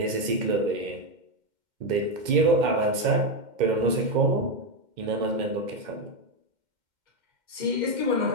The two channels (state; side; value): late; left; 2.1 ms